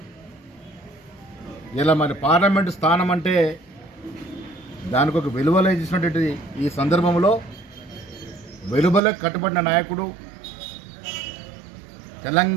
ఇలా మరి పార్లమెంటు స్థానం అంటే దానికి ఒక విలువలే ఇచ్చినటువంటి ఈ సందర్భంలో వెలువలకు కట్టుబడిన నాయకుడు,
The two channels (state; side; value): drops out; left; at 9.0 s